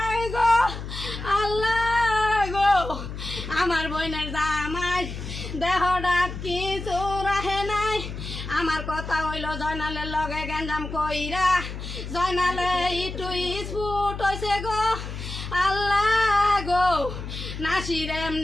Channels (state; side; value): noise; left; hum, 8 dB below the sound